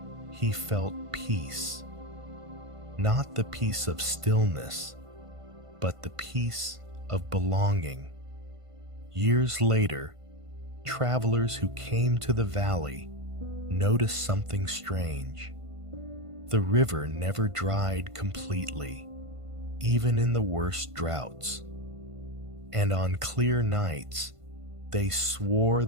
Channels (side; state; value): left; late; 1.5 ms